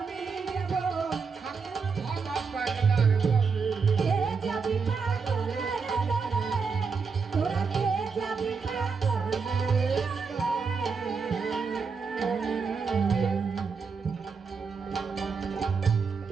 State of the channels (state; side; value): quieter; left; 5.3 dB